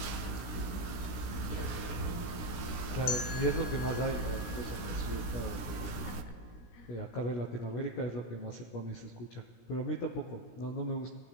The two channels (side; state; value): right; late; 17 ms